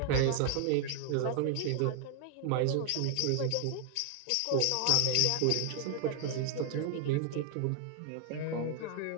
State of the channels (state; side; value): different; both; correlation 0.00